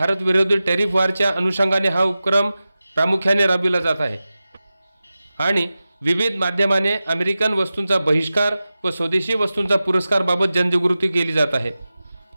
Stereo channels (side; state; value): both; inverted; correlation -0.95